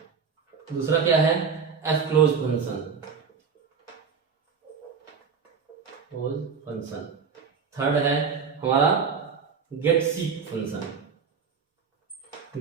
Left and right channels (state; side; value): quieter; left; 5.9 dB